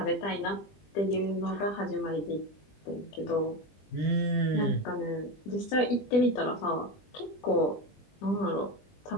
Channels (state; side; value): late; right; 20 ms